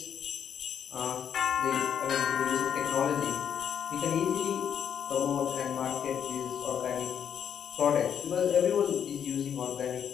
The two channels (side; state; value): right; quieter; 8.4 dB